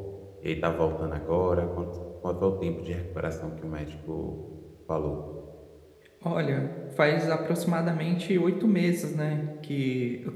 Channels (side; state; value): both; identical; correlation 1.00